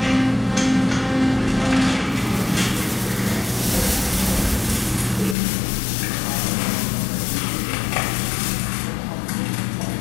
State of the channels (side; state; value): right; drops out; at 5.4 s